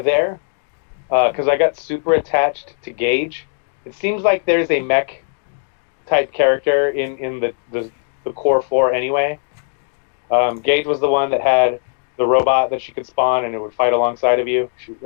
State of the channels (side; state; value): right; silent; digital silence